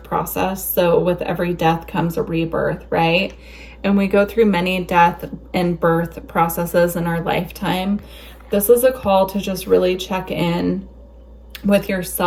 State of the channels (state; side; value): identical; both; correlation 1.00